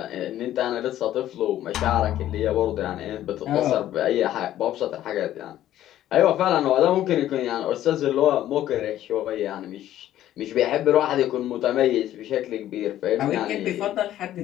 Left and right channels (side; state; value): right; quieter; 12.8 dB